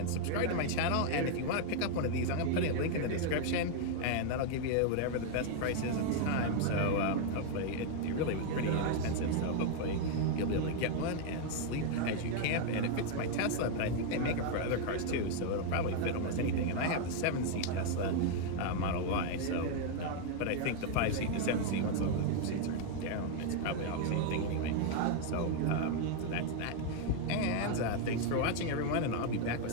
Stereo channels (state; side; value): different; both; correlation 0.00